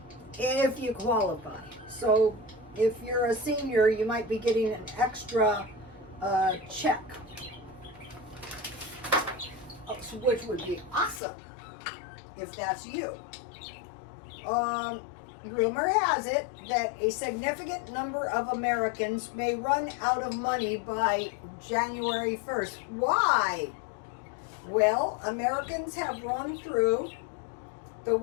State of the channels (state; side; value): drops out; right; at 11.2 s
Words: if you qualify. So if you're a senior, you might be getting an extra check, which would be awesome if that's you. Rumor has it that a significant number of Americans may run out of money by January 1st. Why? Well, Americans have run through the